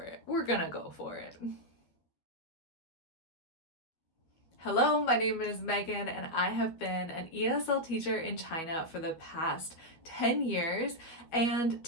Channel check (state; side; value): late; right; 12 ms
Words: it. We're gonna go for it. Hello, my name is Megan, and I have been an ESL teacher in China for the past 10 years. And